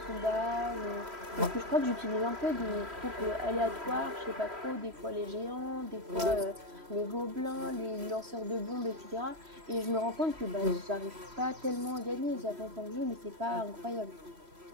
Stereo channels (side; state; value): left; late; 3.0 ms